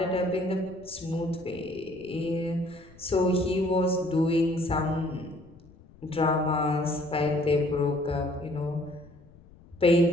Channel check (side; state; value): left; noise; rumble, 24 dB below the sound